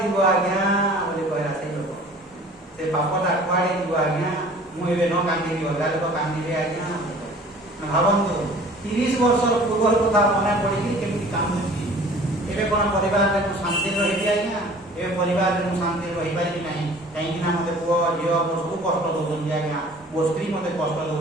ଯିବ ଆଜ୍ଞା ବୋଲି କହିଲା ସେଇ ଲୋକ। ସେ ପାପଟା କୁଆଡ଼େ ଯିବ ଆଜ୍ଞା, ମୁଁ ଏବେ ନ କାନ୍ଦିବି ଅଲଗା ଲୋକ କାନ୍ଦିବେ ଆଜ୍ଞା। ଭାବନ୍ତୁ 30 ବର୍ଷର ପୂର୍ବର କଥା ମନେ ପଡ଼ିକି କେମିତି କାନ୍ଦୁଛି। ଏବେ କ'ଣ ପରିବାରରେ ମୁଁ ଶାନ୍ତିରେ ରହିବି ଆଜ୍ଞା, ଏବେ ପରିବାରରେ ମୁଁ ଶାନ୍ତିରେ ରହିପାରିବି ନାହିଁ, କାହିଁକିନା ମୋତେ ପୁଅ ଝିଅ ମୋ ସବୁ କଷ୍ଟ ଦେଉଛନ୍ତି ଆଜ୍ଞା, ମୋ ସ୍ତ୍ରୀ ମୋତେ କଷ୍ଟ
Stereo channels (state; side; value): normal; both; correlation 0.48